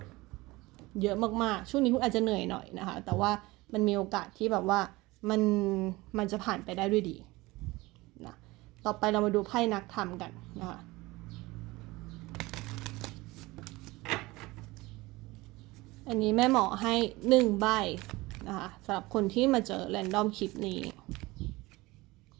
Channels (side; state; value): left; quieter; 21.1 dB